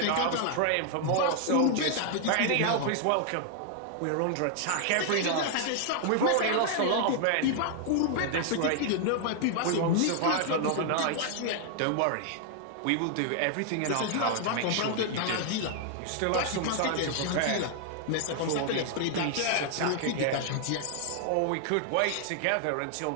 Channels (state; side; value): different; both; correlation 0.00